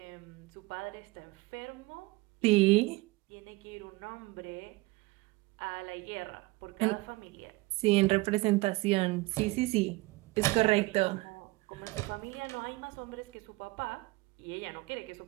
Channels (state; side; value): quieter; left; 22.1 dB